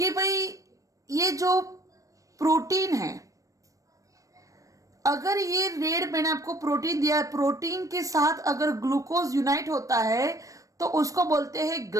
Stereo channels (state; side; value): late; left; 0.16 ms